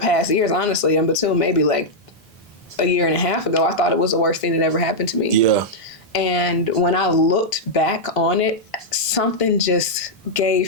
years, honestly, and until maybe like a year and a half ago, I thought it was the worst thing that ever happened to me. Yeah. And when I looked back on it, something just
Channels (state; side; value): normal; both; correlation -0.05